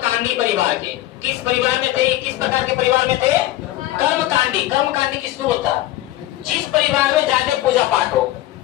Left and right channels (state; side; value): quieter; right; 15.3 dB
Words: परिवार के। किस परिवार में थे, किस प्रकार के परिवार में थे, कर्मकांडी। कर्मकांडी किसको होता है, जिस परिवार में ज्यादा पूजा पाठ हो,